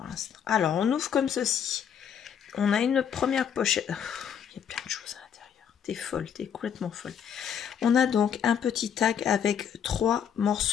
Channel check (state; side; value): quieter; right; 8.2 dB